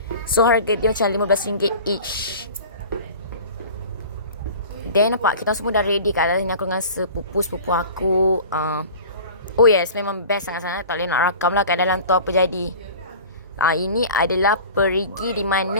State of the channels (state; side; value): inverted; both; correlation -0.40